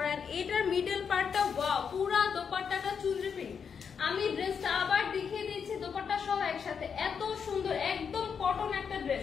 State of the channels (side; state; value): right; quieter; 6.6 dB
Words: এটার মিডল পার্টটা ওয়াও, পুরা দোপাট্টাটা চুনরি প্রিন্ট। আমি ড্রেসটা আবার দেখিয়ে দিচ্ছি দোপাট্টা সহ একসাথে। এত সুন্দর একদম কটন একটা